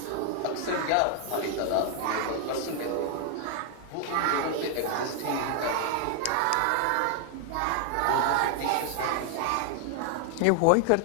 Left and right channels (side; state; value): both; different; correlation 0.00